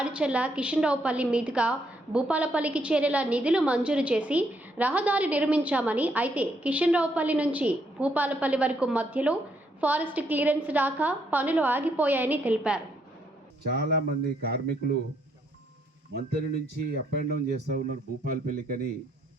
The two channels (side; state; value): both; normal; correlation 0.73